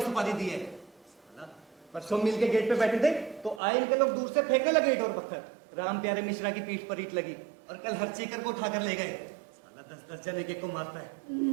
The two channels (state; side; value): drops out; left; at 3.6 s